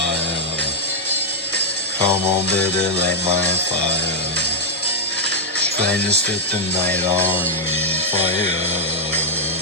Come on, baby, light my fire. Trying to set the night on fire.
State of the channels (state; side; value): normal; both; correlation -0.02